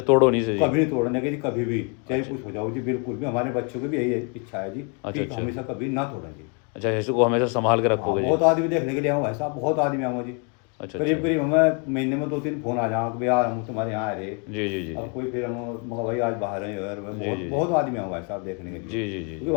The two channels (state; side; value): quieter; right; 34.9 dB